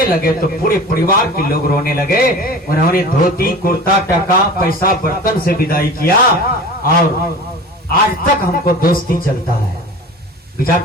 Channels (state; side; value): normal; both; correlation 0.37